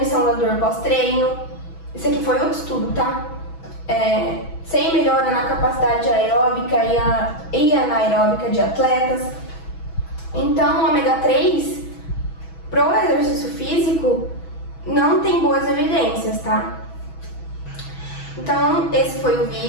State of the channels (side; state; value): right; late; 6.1 ms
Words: da dor pós-treino. Isso aqui foi outro estudo, tá? Sem melhora na capacidade aeróbica e anaeróbica de atletas. Então, o ômega 3, pro exercício físico, não tem boas evidências, tá? Então, esse foi o